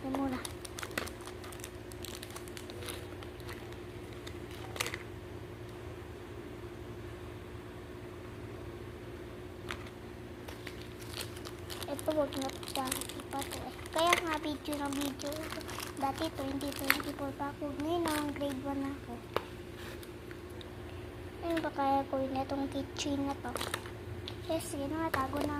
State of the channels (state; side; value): identical; both; correlation 1.00